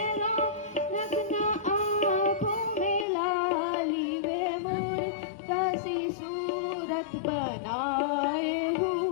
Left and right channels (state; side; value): drops out; right; at 3.1 s